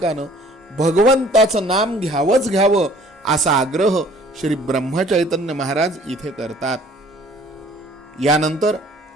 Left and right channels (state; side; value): normal; both; correlation 0.54